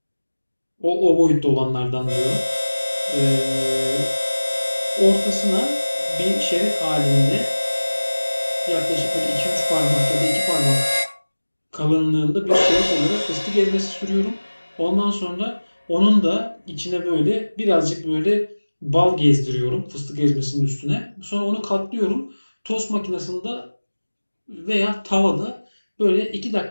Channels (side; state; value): both; inverted; correlation -1.00